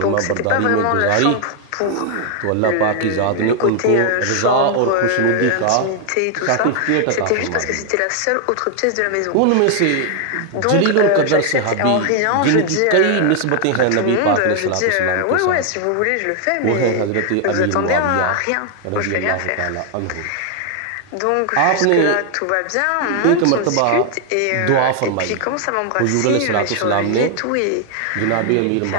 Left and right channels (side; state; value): both; different; correlation 0.00